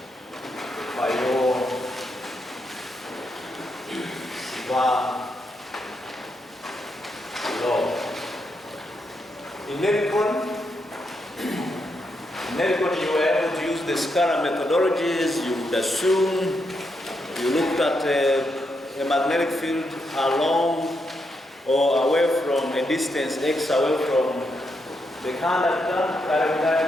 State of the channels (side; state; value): both; normal; correlation 0.81